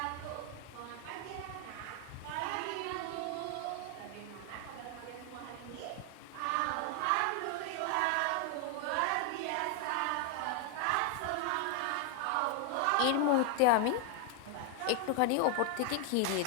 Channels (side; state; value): both; different; correlation 0.00